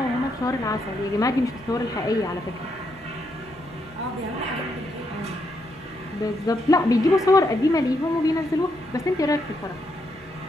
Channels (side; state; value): both; normal; correlation 0.78